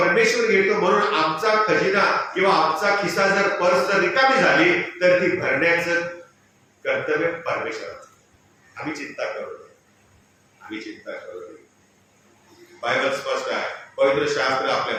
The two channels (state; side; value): identical; both; correlation 1.00